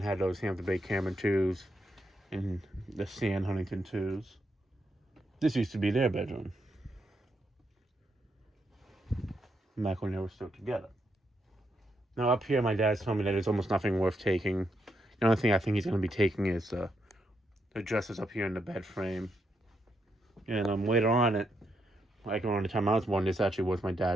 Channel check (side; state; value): both; normal; correlation 0.80